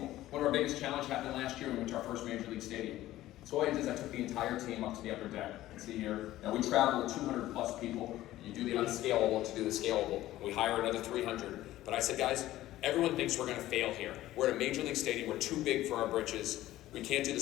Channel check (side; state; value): right; quieter; 15.1 dB